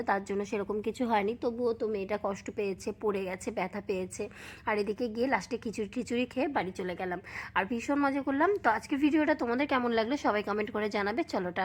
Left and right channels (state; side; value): identical; both; correlation 1.00